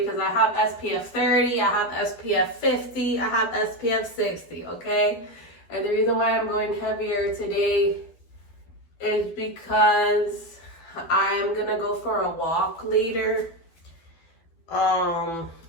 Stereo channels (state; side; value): late; right; 12 ms